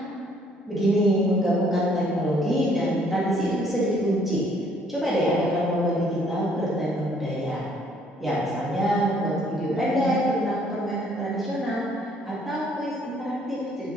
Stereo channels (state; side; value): normal; both; correlation 0.63